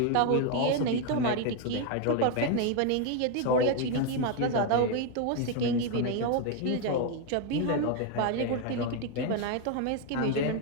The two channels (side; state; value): both; different; correlation 0.01